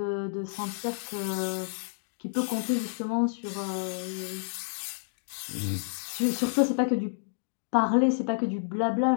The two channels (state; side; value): silent; right; digital silence